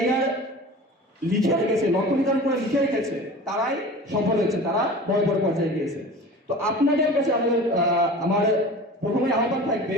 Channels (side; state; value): both; normal; correlation 0.38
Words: লিখে রেখেছে, লক্ষ্য নির্ধারণ করে লিখে রেখেছে, তারাই সফল হয়েছে, তারা বড় বড় পর্যায়ে গিয়েছে। তো আপনাদের কাছে আমার প্রথমে আহ্বান থাকবে,